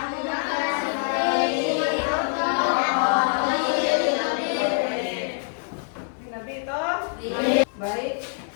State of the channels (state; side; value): silent; right; digital silence